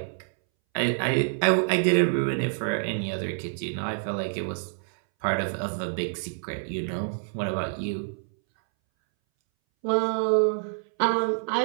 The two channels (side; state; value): left; silent; 60 dB below the other